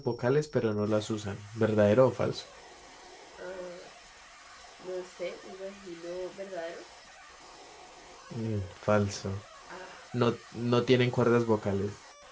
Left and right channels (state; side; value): identical; both; correlation 1.00